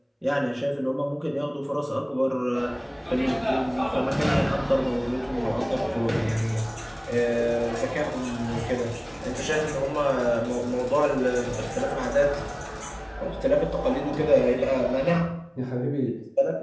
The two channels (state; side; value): identical; both; correlation 1.00